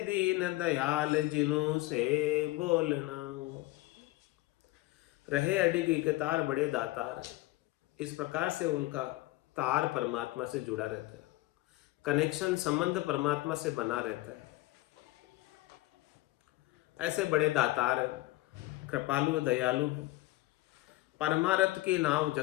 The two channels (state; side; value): quieter; right; 18.8 dB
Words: दीन दयाल जिनु से बोलना। रहे अडिग इक तार बड़े दातार है, इस प्रकार से उनका तार परमात्मा से जुड़ा रहता है, कनेक्शन संबंध परमात्मा से बना रहता है। ऐसे बड़े दातार है, कृपालु दयालु है, परमारथ की नाव